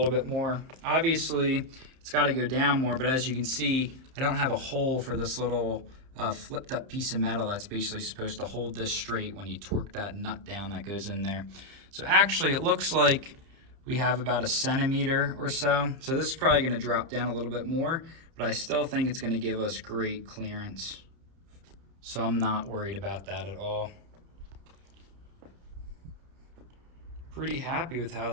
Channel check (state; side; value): late; left; 30 ms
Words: bit more. Obviously, it's gotta go down more, but as you can see, I don't have a hole for this little flipped up piece of metal that's basically supposed to hold this straight when you torque that nut down that goes in there. So actually, it looks like we have about a centimeter or so. So this is probably gonna drop down a little bit more, but I still think it's gonna give us great clearance. So I'm not worried about that at all. Pretty happy with how